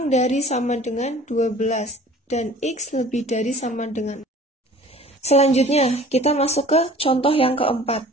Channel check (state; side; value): normal; both; correlation 0.47